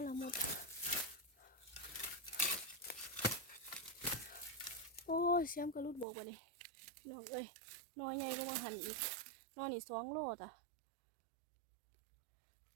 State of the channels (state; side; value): drops out; left; at 6.1 s